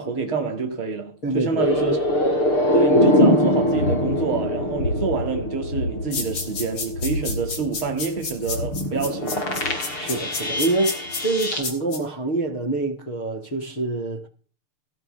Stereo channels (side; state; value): right; late; 6.7 ms